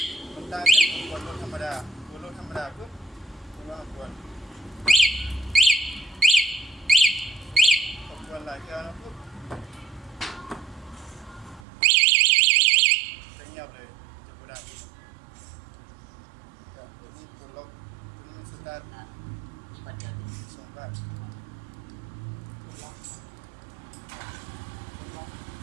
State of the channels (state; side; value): drops out; left; at 11.6 s